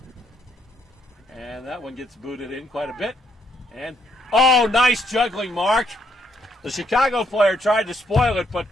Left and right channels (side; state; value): both; normal; correlation 0.72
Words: And that one gets booted in quite a bit. And, oh, nice juggling, Mark. The Chicago player tried to spoil it, but